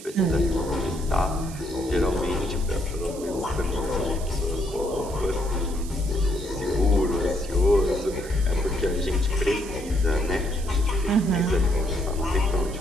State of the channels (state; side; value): noise; right; hiss, 16 dB below the sound